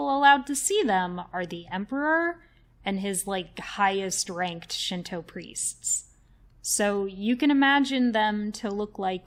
allowed to see them are the emperor and his, highest ranked Shinto priests. So you can imagine them to look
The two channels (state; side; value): identical; both; correlation 1.00